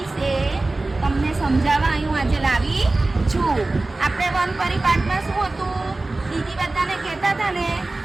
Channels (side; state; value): left; quieter; 3.1 dB